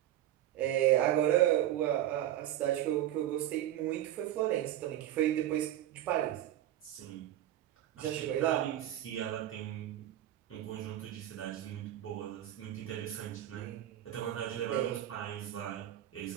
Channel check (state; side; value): quieter; left; 12.6 dB